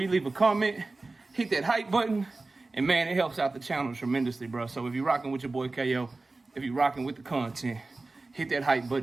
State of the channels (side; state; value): left; quieter; 3.4 dB